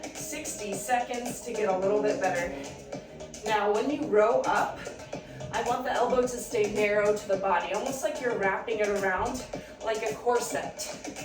60 seconds to get a little bit better. Now, when you row up, I want the elbow to stay narrow to the body, almost like you're wrapping it around like a corset.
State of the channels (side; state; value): both; identical; correlation 1.00